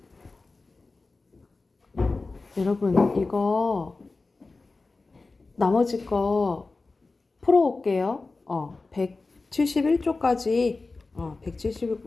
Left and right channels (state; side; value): quieter; right; 3.6 dB